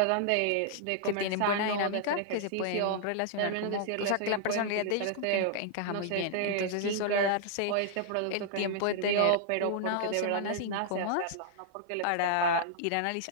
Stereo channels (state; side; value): different; both; correlation -0.01